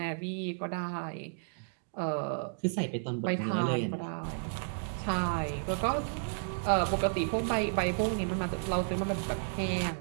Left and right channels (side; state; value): left; silent; digital silence